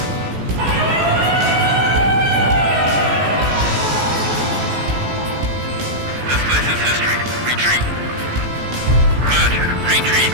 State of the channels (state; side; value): late; left; 16 ms